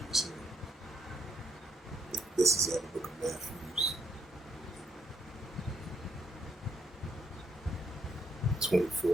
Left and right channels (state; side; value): normal; both; correlation 0.74